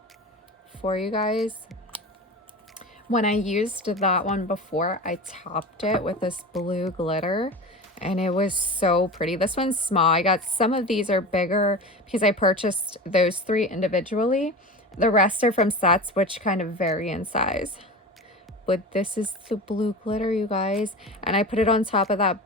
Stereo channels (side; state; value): both; normal; correlation 0.30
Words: for you guys. When I used that one before, I topped it with this blue glitter and it was so pretty. This one's small. I got some of these are bigger because I purchased those 3 individually. The rest are from sets, which kind of vary in size. But this is the blue glitter, you guys. And I put it on top of